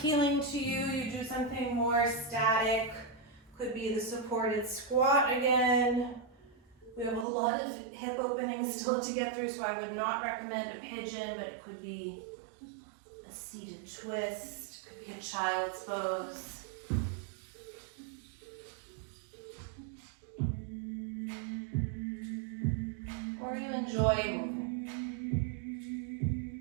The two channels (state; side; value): drops out; left; at 7.2 s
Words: to you, you do something more static. Could be the supported squat again. We have a lot of hip openings still to get through, so I would not recommend a pigeon, but it could be a seated twist, could be a child's pose. Or you enjoy moving.